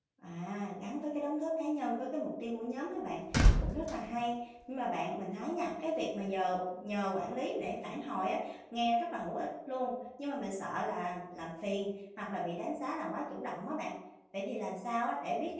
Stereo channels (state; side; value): identical; both; correlation 1.00